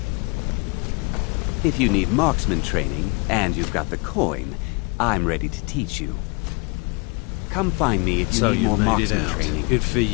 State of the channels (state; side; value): quieter; right; 30.0 dB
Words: If you need marksman training, and you've got the coin, I'm ready to teach you. Come find me if you need more marksman training. Good for